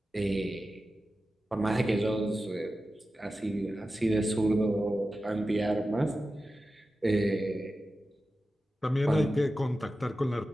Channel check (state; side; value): normal; both; correlation 0.93